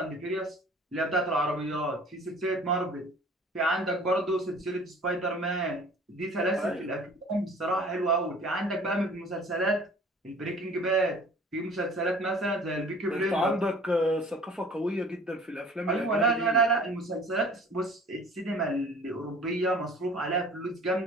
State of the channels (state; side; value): normal; both; correlation 0.48